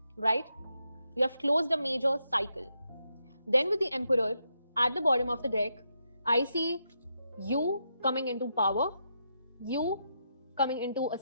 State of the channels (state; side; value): inverted; both; correlation -0.82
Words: right? You have closed a major cycle. Then with the Emperor at the bottom of the deck, I see you coming into power, you coming into a